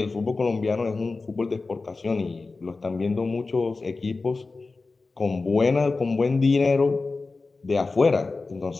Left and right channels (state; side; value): quieter; right; 3.8 dB